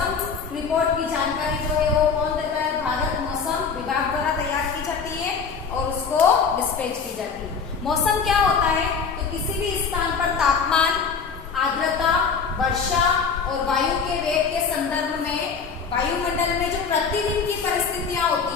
रिपोर्ट की जानकारी जो है वो कौन देता है? भारत मौसम विभाग द्वारा तैयार की जाती है और उसको डिस्पैच की जाती है। मौसम क्या होता है? तो किसी भी स्थान पर तापमान, आर्द्रता, वर्षा और वायु के वेग के संदर्भ में वायुमंडल में जो प्रतिदिन की परिस्थितियां होती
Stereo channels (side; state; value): right; quieter; 5.7 dB